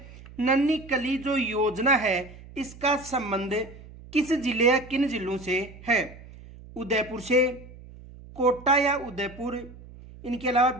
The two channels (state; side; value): noise; right; hum, 18 dB below the sound